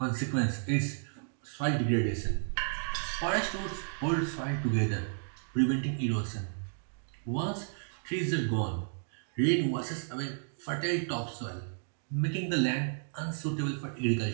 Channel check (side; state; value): left; silent; digital silence